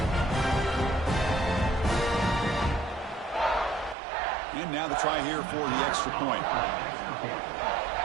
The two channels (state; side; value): drops out; left; at 4.0 s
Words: And now the try here for the extra point.